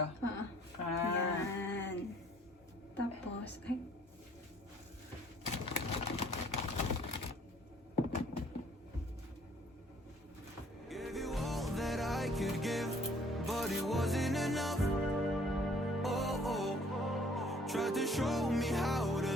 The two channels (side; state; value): both; normal; correlation 0.58